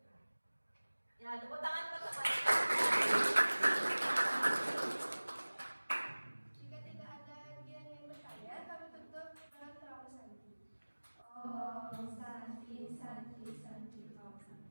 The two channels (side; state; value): both; inverted; correlation -1.00